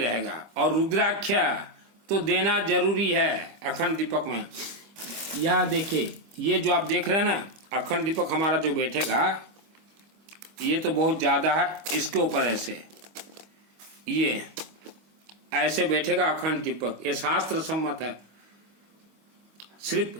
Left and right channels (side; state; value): left; late; 25 ms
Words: और रुद्राक्ष तो देना जरूरी है अखंड दीपक में। यह देखिए, ये जो आप देख रहे हैं ना अखंड दीपक हमारा जो बैठेगा, ये तो बहुत ज्यादा है। इसके ऊपर ऐसे, ये ऐसे बैठेगा अखंड दीपक। ये शास्त्र सम्मत है।